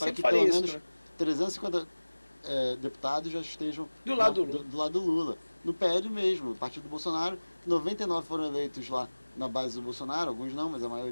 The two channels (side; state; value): both; inverted; correlation -1.00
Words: pelo menos 350 deputados já estejam do lado do Lula. No PL mesmo, o partido do Bolsonaro, 99 foram eleitos lá na base do Bolsonaro, alguns não, mas a